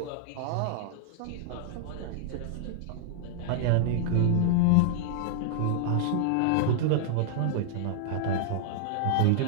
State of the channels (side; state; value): both; different; correlation 0.00